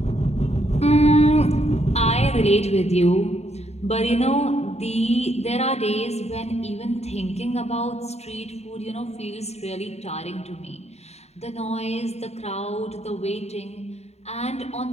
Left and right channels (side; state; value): right; late; 0.31 ms